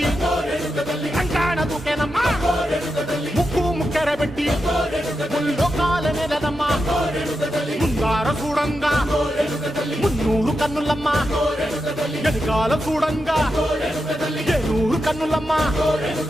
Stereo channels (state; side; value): normal; both; correlation 0.88